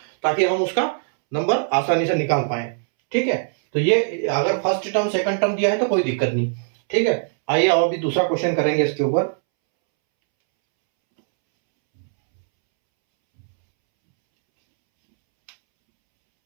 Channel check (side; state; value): left; silent; 65 dB below the other